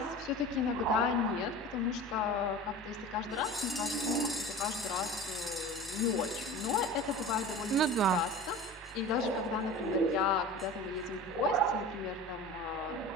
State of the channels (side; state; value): both; normal; correlation 0.35